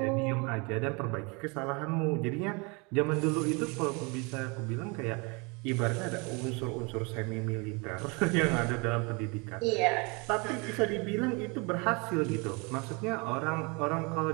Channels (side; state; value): left; quieter; 29.8 dB